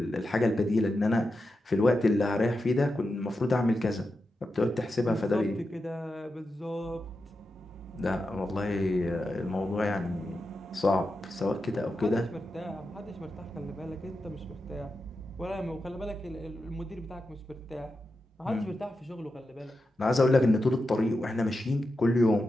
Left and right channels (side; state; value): both; normal; correlation 0.89